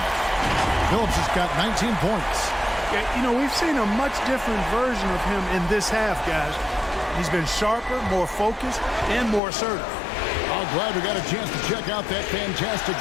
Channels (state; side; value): drops out; right; at 9.4 s